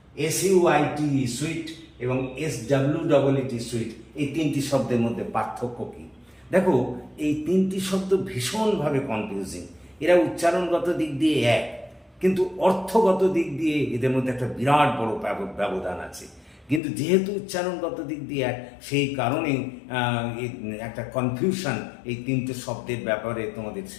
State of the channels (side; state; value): right; drops out; at 16.8 s